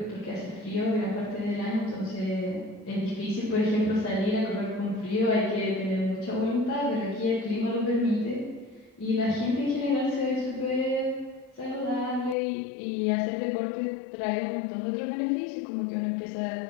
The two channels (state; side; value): drops out; right; at 12.4 s